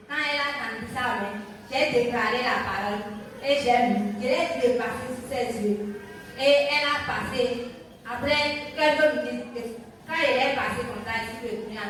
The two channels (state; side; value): identical; both; correlation 1.00